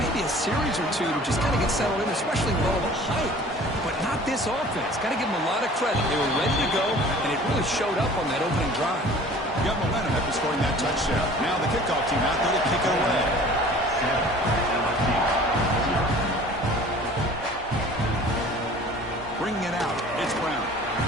a series or two to just kind of get settled in, especially with all the hype. But not this offense. Got to give them a lot of credit. They were ready to go, and it really showed up on that opening drive. Got momentum after scoring that touchdown. Now the kickoff team out there to kick it away. Bringing it out. It's Brown.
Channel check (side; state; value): both; normal; correlation 0.47